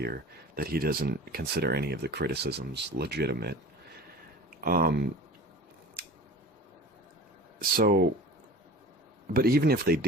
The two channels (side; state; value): both; normal; correlation 0.39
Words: that he doesn't consider any of the criticisms legitimate. So, but even if they